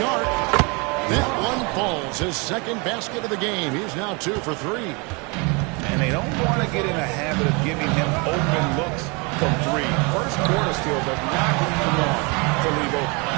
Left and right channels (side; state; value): left; quieter; 30.2 dB